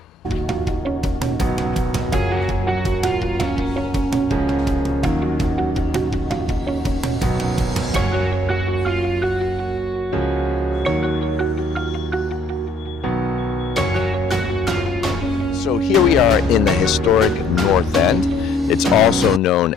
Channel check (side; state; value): both; normal; correlation 0.67